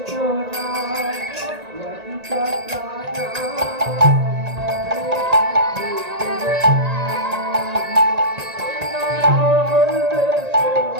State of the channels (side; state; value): left; late; 1.8 ms